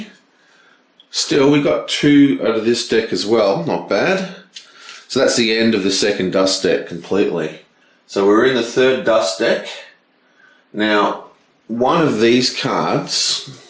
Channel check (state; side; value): identical; both; correlation 1.00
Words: Still, we got 2 out of this deck as well, not bad. So that's the end of the second dust deck completely. So we're in the third dust deck. Now, one of these cards